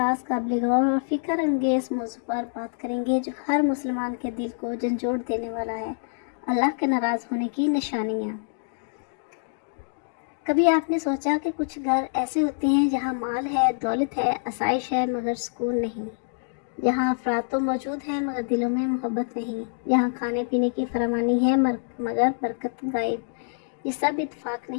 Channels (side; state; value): right; silent; digital silence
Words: قابل غور اور فکر انگیز موضوع پر بات کریں گے جو ہر مسلمان کے دل کو جھنجھوڑ دینے والا ہے، اللہ کے ناراض ہونے کی نشانیاں۔ کبھی آپ نے سوچا کہ کچھ گھر ایسے ہوتے ہیں جہاں مال ہے، دولت ہے، آسائش ہے، مگر سکون نہیں، جہاں افراد تو موجود ہیں مگر دلوں میں محبت نہیں، جہاں کھانے پینے کی فراوانی ہے مگر برکت غائب۔ یہ سب اتفاق